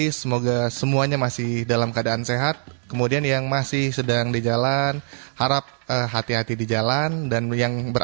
Semoga semuanya masih dalam keadaan sehat. Kemudian yang masih sedang di jalan, harap hati-hati di jalan, dan yang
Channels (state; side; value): silent; left; 64 dB below the other